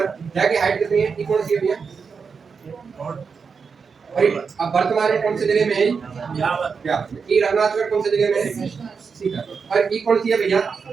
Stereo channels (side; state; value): left; quieter; 5.6 dB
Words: जहाँ की हाइट कितनी है? ये कौन सी है भैया? अब वर्तमान में कौन से जिले में है? ये रघुनाथगढ़ कौन से जिले में है? सीकर। और ये कौन सी है भैया?